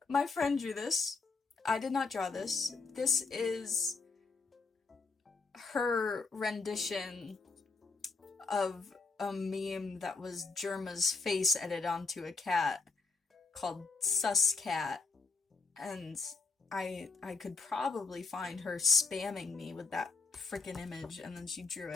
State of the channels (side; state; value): right; quieter; 4.2 dB